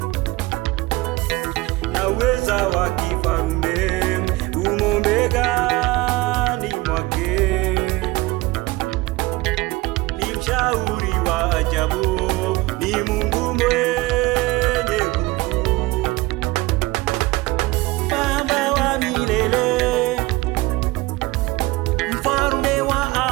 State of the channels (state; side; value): quieter; left; 21.3 dB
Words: Naweza wa kifarume umo begani mwake, ni mshauri wa ajabu, ni Mungu mwenye